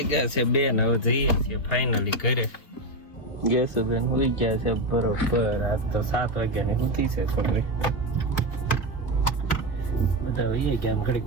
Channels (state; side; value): late; right; 2.1 ms